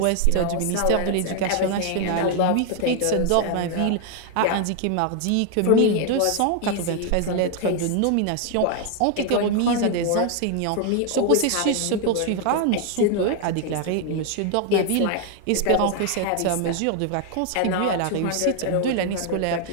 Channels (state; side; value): different; both; correlation 0.01